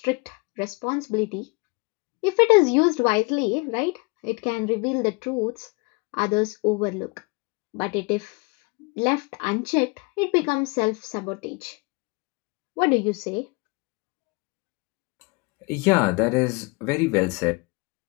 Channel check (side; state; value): right; quieter; 28.6 dB